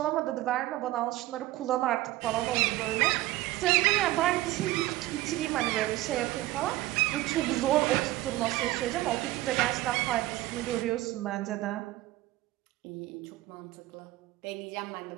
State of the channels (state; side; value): quieter; left; 16.9 dB